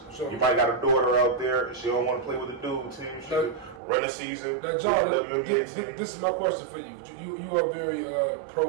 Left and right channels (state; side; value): drops out; left; at 3.8 s